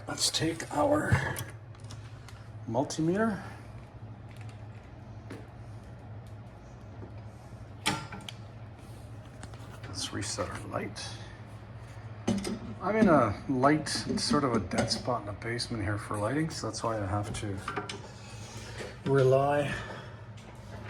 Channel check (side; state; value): both; identical; correlation 1.00